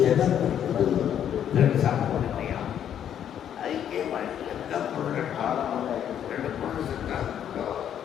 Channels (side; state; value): right; quieter; 9.6 dB